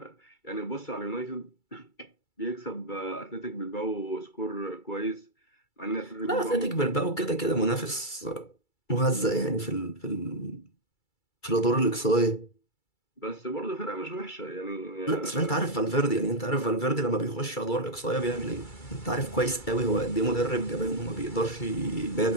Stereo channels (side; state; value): right; late; 2.3 ms